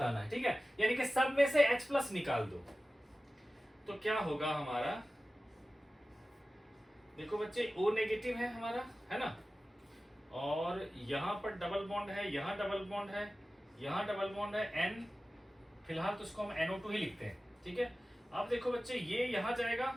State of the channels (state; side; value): normal; both; correlation 0.96